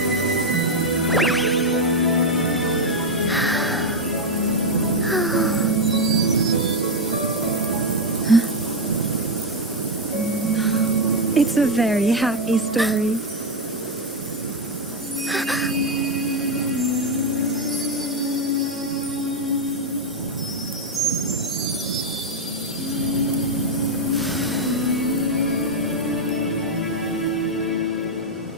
It's a very happy story.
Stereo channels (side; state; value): both; normal; correlation 0.05